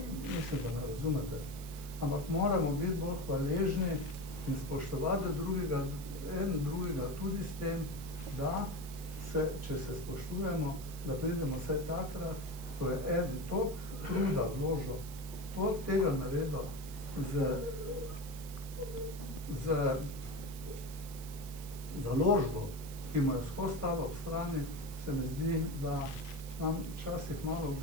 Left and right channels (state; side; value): noise; right; hiss, 15 dB below the sound